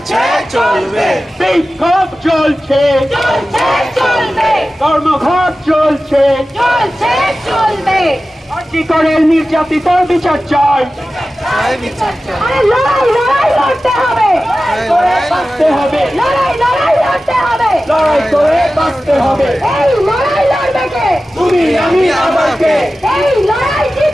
চলবে, বিক্ষোভ চলছে, চলছে, চলবে, ধর্মঘট চলছে। চলছে, চলবে। আরজি করে নির্যাতিতার বিচার চাই, আরে লড়াই, লড়াই লড়তে হবে, বাঁচতে হবে, লড়াই, লড়াই লড়তে হবে। লড়াই করে বাঁচতে হবে। এই লড়াই লড়বে কে? তুমি আমি আবার কে? এই লড়াই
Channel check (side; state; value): both; normal; correlation 0.95